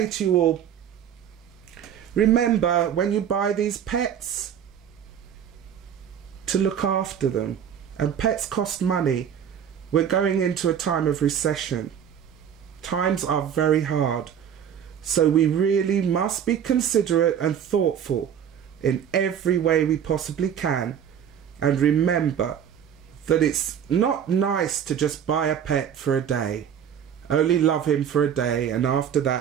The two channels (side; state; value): left; quieter; 8.7 dB